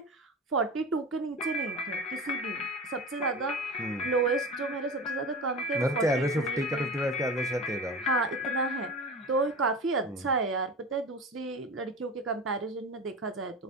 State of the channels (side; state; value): both; normal; correlation 0.31